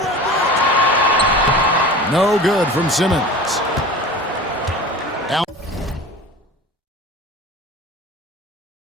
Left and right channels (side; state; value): both; normal; correlation 0.36